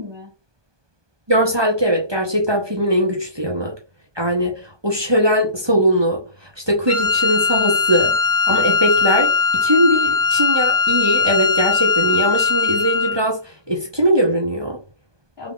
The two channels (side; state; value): left; late; 1.2 ms